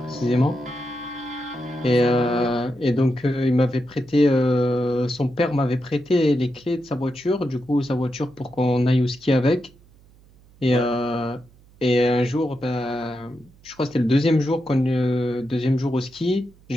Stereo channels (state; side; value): noise; right; hum, 27 dB below the sound